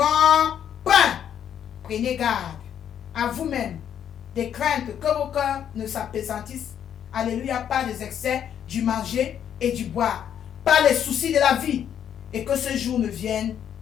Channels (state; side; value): quieter; right; 9.3 dB